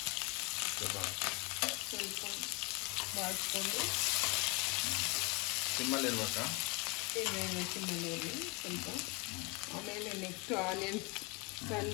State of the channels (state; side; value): quieter; right; 28.9 dB